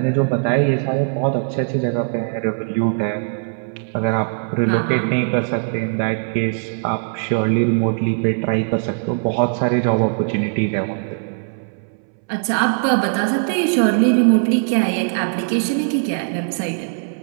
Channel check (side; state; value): left; silent; 66 dB below the other